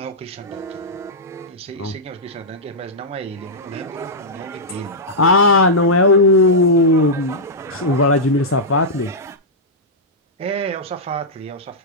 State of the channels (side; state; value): both; normal; correlation -0.10